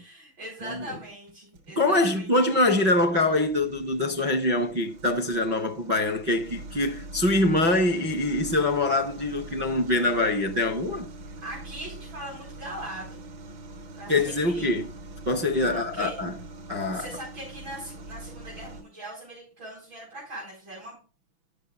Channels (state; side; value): late; left; 6.0 ms